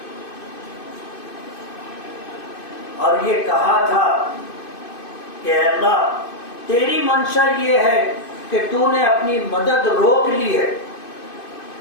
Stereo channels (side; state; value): right; late; 2.5 ms